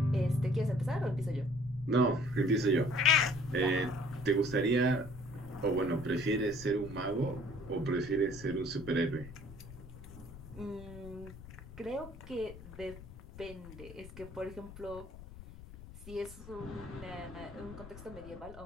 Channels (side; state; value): left; noise; rumble, 15 dB below the sound